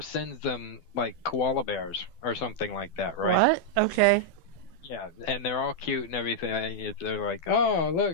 sends them like koala bears or something like that, right? What? Okay. Yeah, and they're all cute and everything. They're like, oh,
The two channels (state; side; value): late; right; 12 ms